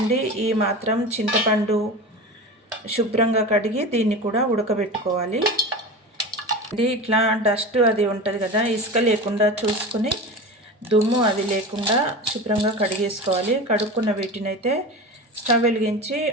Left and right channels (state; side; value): normal; both; correlation 0.29